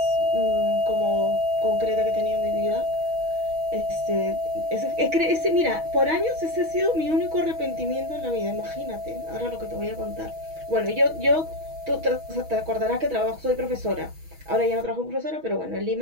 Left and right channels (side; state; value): left; late; 6.3 ms